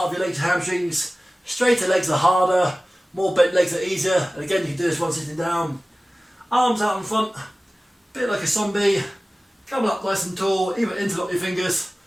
of your legs and hamstrings. Straighter legs are harder, more bent legs are easier. And again, you can do this while sitting down. Arms out in front, a bit like a zombie. Coming up nice and tall, either interlock your fingers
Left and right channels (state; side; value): normal; both; correlation 0.97